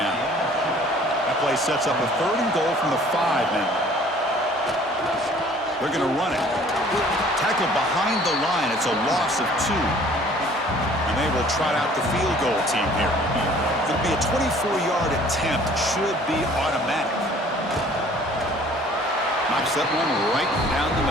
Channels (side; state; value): both; normal; correlation 0.53